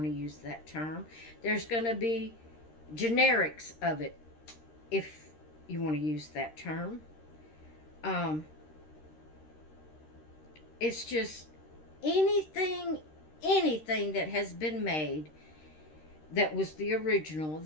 to use that term. There's going to be generics of it, if you want to use that term. It's just anything that has been made that was the original,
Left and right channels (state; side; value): late; right; 13 ms